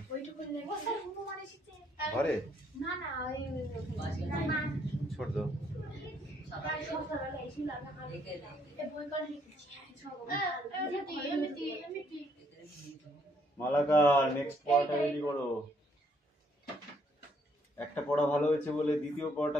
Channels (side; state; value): both; normal; correlation 0.69